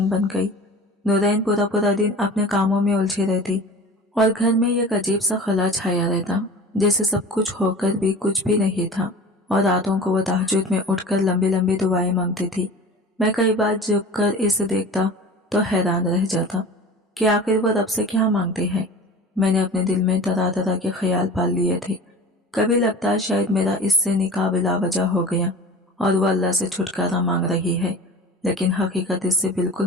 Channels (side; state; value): both; normal; correlation 0.38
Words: बन गई। नूरैन पूरा पूरा दिन अपने कामों में उलझी रहती और घर में एक अजीब सा खला छाया रहता, जैसे सब कुछ होकर भी कुछ भी नहीं था। और रातों को वो तहज्जुद में उठकर लंबी लंबी दुआएं मांगती थी। मैं कई बार झुककर इसे देखता तो हैरान रह जाता कि आखिर वो रब से क्या मांगते हैं। मैंने अपने दिल में तरह तरह के ख्याल पाल लिए थे। कभी लगता शायद मेरा इससे निकाह बिला वजह हो गया और वो अल्लाह से छुटकारा मांग रही है, लेकिन हकीकत इससे बिल्कुल